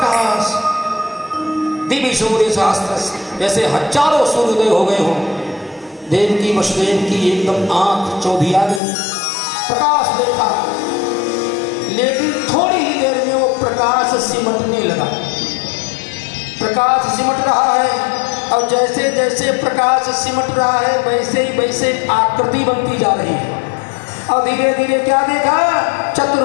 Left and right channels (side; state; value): right; drops out; at 8.8 s